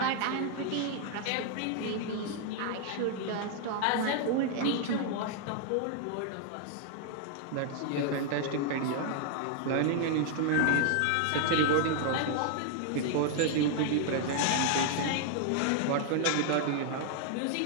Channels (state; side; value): different; both; correlation 0.00